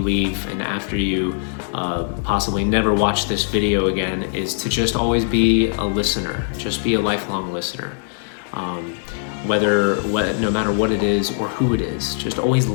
and after you possibly never watch this video again, is to just always be a listener, just be a lifelong listener. No matter what it is or who it is, just always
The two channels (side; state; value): right; silent; digital silence